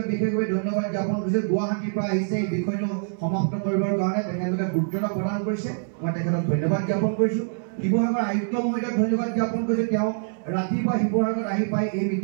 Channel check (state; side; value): silent; left; 62 dB below the other